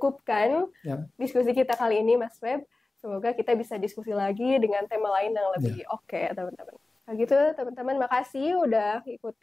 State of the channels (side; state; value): right; quieter; 3.1 dB